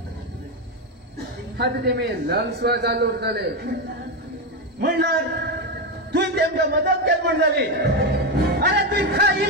आता तेमी लंग्सवर चालू उरतले म्हणल्यार तुवें तेमकां मदत केली म्हण जाली अरे तुवें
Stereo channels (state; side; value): normal; both; correlation 0.10